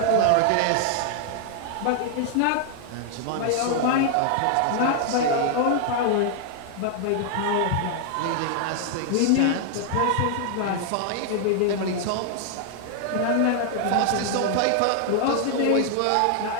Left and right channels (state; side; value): different; both; correlation 0.00